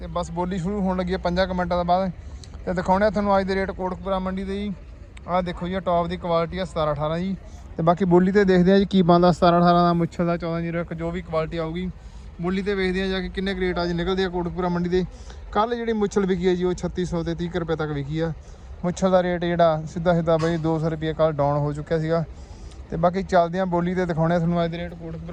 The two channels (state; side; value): identical; both; correlation 1.00